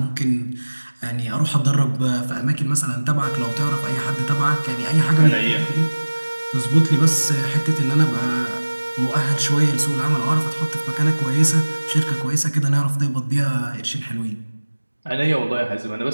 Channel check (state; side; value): inverted; both; correlation -1.00